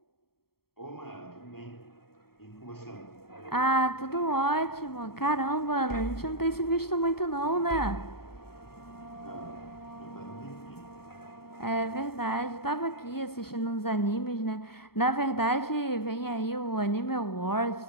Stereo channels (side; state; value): right; late; 0.95 ms